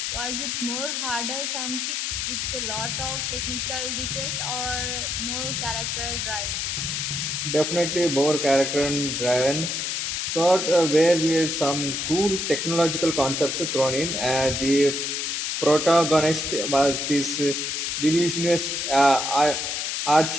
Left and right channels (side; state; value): left; noise; hiss, 1 dB below the sound